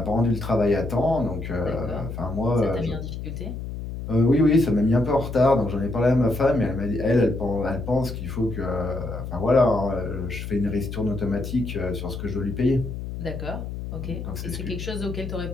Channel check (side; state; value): left; noise; hum, 7 dB below the sound